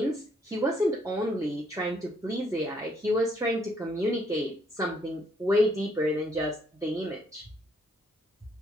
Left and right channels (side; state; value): both; normal; correlation 0.70